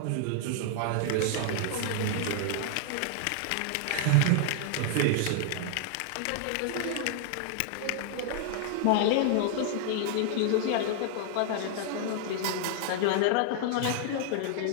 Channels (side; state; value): both; different; correlation 0.00